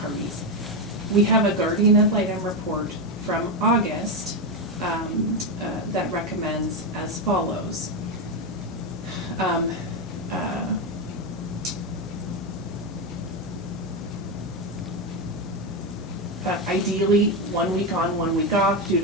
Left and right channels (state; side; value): normal; both; correlation 0.10